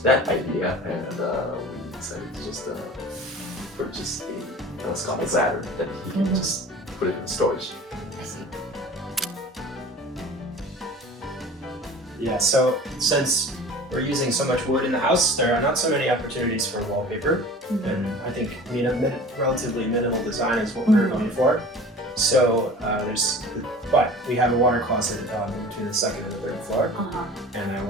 that idea and we decided to just purchase a telescopic ladder that he can just put it in storage. I see. Yeah, so since we're using so much wood in the house, there are not so many opportunities for wallpaper, and I think relatively minimal design is what we're going for. So but we have a water closet between the second and the third floor, and I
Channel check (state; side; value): normal; both; correlation 0.41